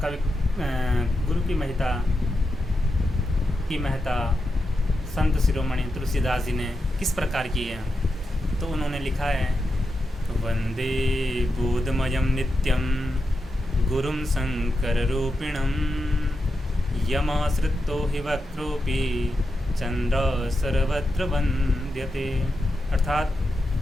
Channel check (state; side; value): normal; both; correlation 0.88